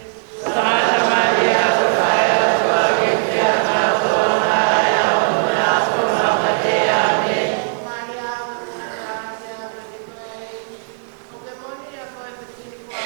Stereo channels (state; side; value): silent; left; digital silence